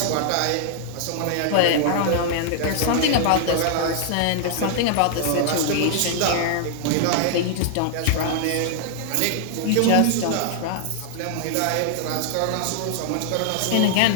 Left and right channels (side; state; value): both; different; correlation 0.00